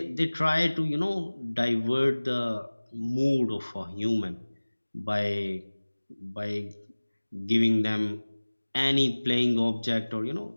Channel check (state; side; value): inverted; both; correlation -1.00